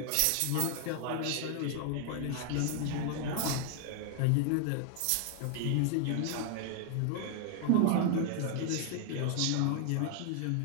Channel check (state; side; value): different; both; correlation 0.00